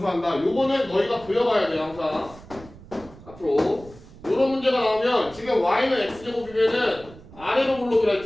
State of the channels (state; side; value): noise; right; rumble, 20 dB below the sound